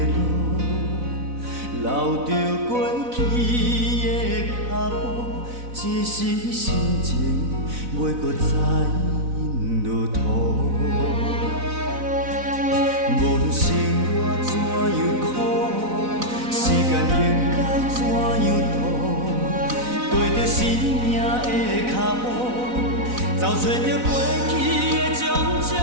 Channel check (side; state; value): left; late; 4.0 ms